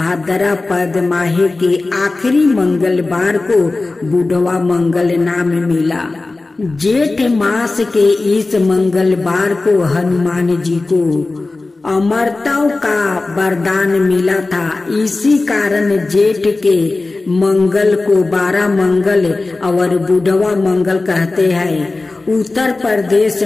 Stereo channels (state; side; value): quieter; right; 3.3 dB